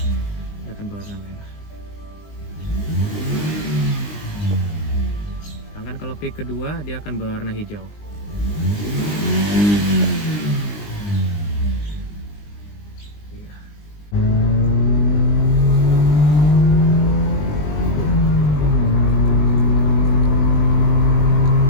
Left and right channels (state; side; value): late; right; 20 ms